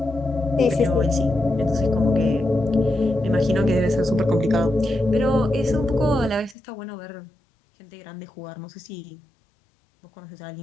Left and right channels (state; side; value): drops out; right; at 6.6 s